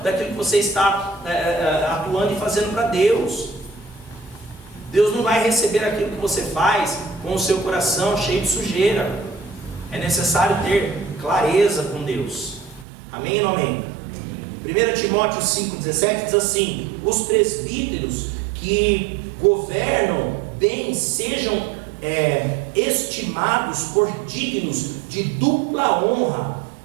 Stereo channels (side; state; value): left; drops out; at 12.9 s